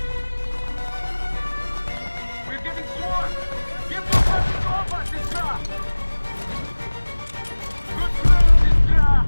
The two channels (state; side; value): inverted; both; correlation -1.00